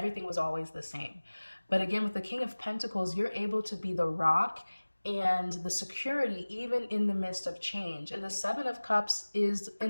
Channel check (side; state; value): both; inverted; correlation -1.00